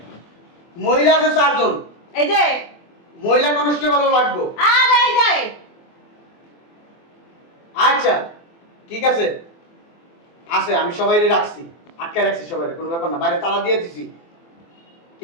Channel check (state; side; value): late; right; 24 ms